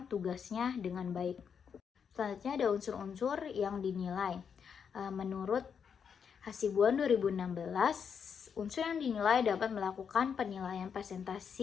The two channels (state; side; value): quieter; right; 7.0 dB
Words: tugasnya dengan baik. Selanjutnya ada unsur-unsur yang dinilai. Menurut Hasibuan 2016, unsur yang dinilai dapat melakukan penilaian